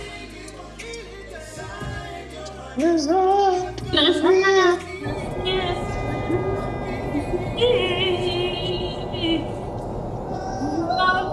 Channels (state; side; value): identical; both; correlation 1.00